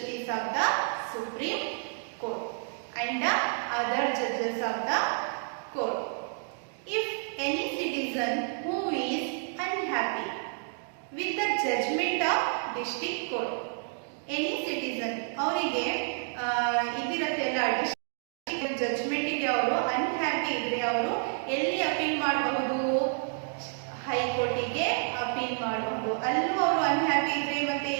of the Supreme Court and the other judges of the court. If any citizen who is unhappy with the judgment of district court, any citizen ಅವರಿಗೆ ಇದಿರತ್ತೆಲ್ಲ judgment ಗೆ ಅವರು unhappy ಇದ್ರೆ ಅವರು ಎಲ್ಲಿ appeal ಮಾಡಬಹುದು, ಹೈಕೋರ್ಟಿಗೆ appeal ಮಾಡಬಹುದು. ಅಲ್ಲೂ ಅವರು ಅನ್ಹ್ಯಾಪಿ ಇದ್ರೆ ಮತ್ತೆ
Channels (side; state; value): left; silent; 58 dB below the other